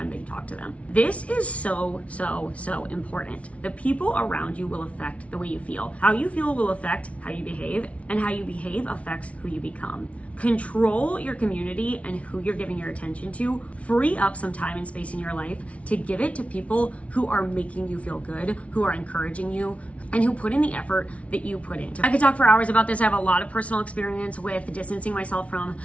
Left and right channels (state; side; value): late; right; 0.064 ms